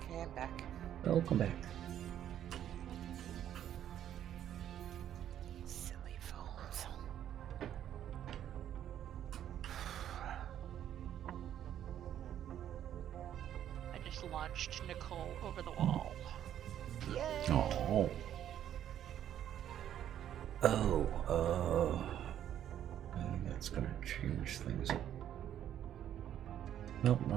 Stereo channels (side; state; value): left; quieter; 10.6 dB